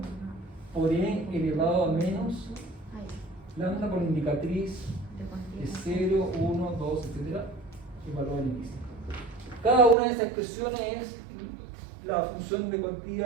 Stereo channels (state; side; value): drops out; left; at 10.0 s